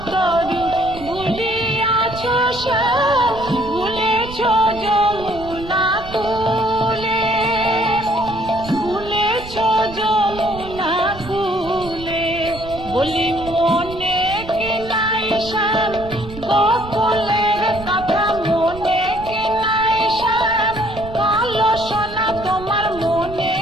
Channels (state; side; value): noise; right; rumble, 14 dB below the sound